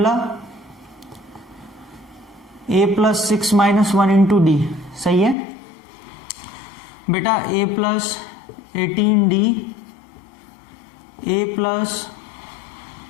A plus 6 minus 1 into d, सही है बेटा। A plus 18D, A plus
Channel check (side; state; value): right; drops out; at 5.4 s